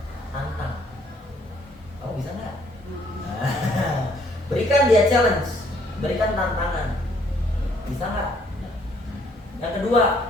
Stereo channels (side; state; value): both; normal; correlation 0.64